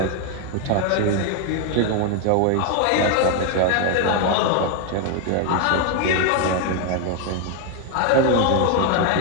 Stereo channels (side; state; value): both; different; correlation 0.01